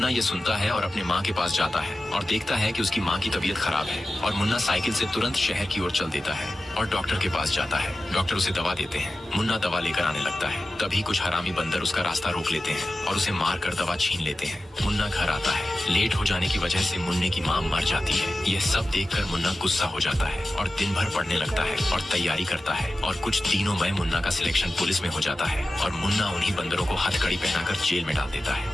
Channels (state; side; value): normal; both; correlation 0.94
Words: ये सुनता है और अपने माँ के पास जाता है और देखता है कि उसकी माँ की तबीयत खराब है। और मुन्ना साइकिल से तुरंत शहर की ओर चल देता है और डॉक्टर के पास जाता है। डॉक्टर उसे दवा देते हैं। मुन्ना दवा लेकर आने लगता है। तभी कुछ हरामी बंदर उसका रास्ता रोक लेते हैं और उसे मार कर दवा छीन लेते हैं। मुन्ना घर आता है। लेट हो जाने की वजह से मुन्ने की माँ मर जाती है। यह सब देखकर मुन्ना गुस्सा हो जाता है और दिन भर पढ़ने लगता है और तैयारी करता है। और कुछ दिनों में मुन्ना का सिलेक्शन पुलिस में हो जाता है और मुन्ना उन्हीं बंदरों को हथकड़ी पहनाकर जेल में डाल देता